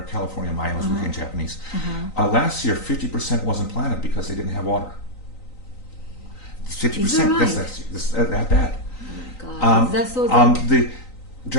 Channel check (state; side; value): late; right; 3.9 ms